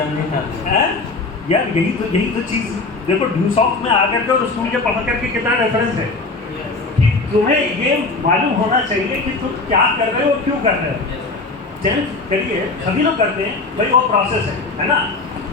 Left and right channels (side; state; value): right; quieter; 3.6 dB